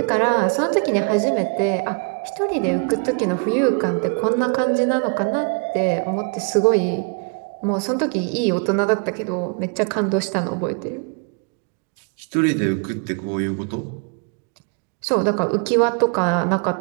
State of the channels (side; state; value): left; quieter; 37.3 dB